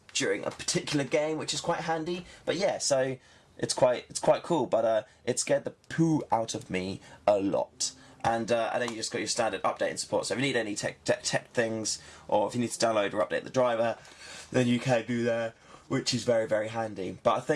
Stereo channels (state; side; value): identical; both; correlation 1.00